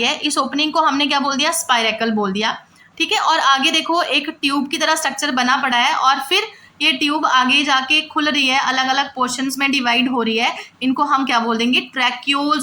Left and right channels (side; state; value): both; identical; correlation 1.00